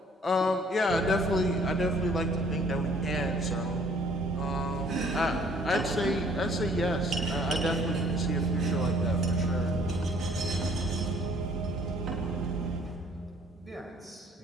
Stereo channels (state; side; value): normal; both; correlation 0.59